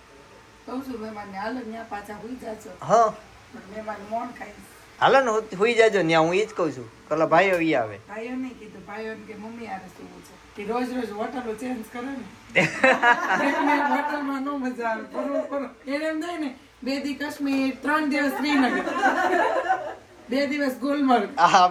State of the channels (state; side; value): identical; both; correlation 1.00